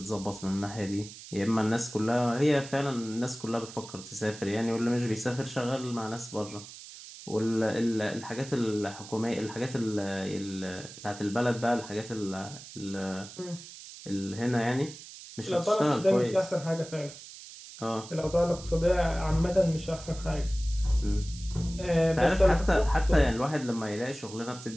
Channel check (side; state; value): right; noise; hiss, 15 dB below the sound